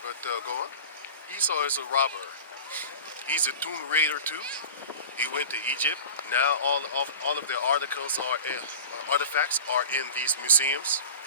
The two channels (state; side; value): inverted; both; correlation -0.36